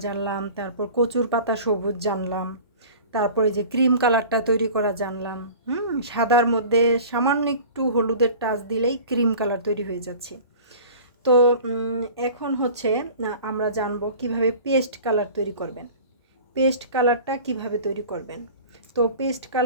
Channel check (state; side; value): inverted; both; correlation -0.41